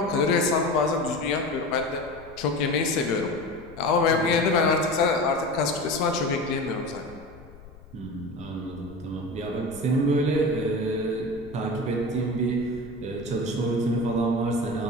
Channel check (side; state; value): left; noise; rumble, 21 dB below the sound